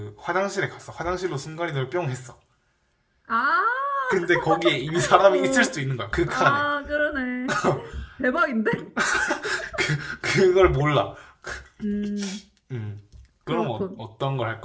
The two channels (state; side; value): identical; both; correlation 1.00